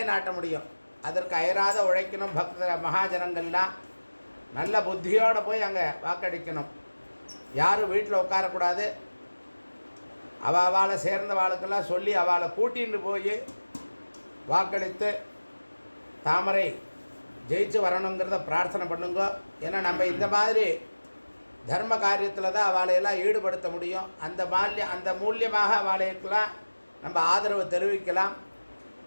முடியும். அதற்கு அயராத உழைக்கணும். பக்த மகாஜனங்கள்லாம் நல்ல புத்தியோடு போய் அங்கே வாக்களிக்கணும். யாரும் வீட்டில் உட்காரக்கூடாது. அவளை சேர்ந்த வாழ்க்கெல்லாம் சொல்லி அவளை கூட்டின்னு போய் வாக்களித்து தாமரை ஜெயிச்சு வரணுங்கிறத பிரார்த்தனை பண்ணுங்க. ஏன்னா நம்ம இந்த மாதிரி தர்ம காரியத்தில் தான் அவளையெல்லாம் ஈடுபடுத்த முடியும். அந்த மூலியமாக அவளைக்கெல்லாம் நம்ம ஆதரவு தெரிவிக்கலாம்.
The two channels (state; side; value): inverted; both; correlation -1.00